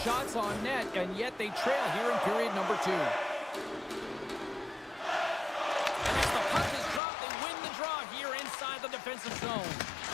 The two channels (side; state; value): right; drops out; at 7.0 s